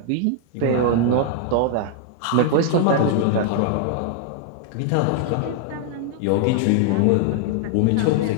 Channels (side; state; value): both; different; correlation 0.00